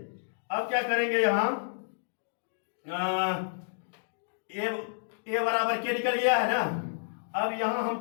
अब क्या करेंगे, यहां ए बराबर के निकल गया है ना? अब यहां हम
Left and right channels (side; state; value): right; silent; digital silence